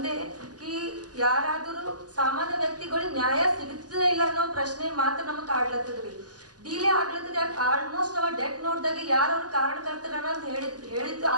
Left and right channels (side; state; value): left; late; 0.68 ms